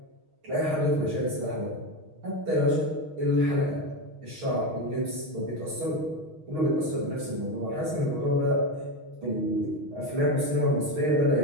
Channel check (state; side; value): late; left; 6.4 ms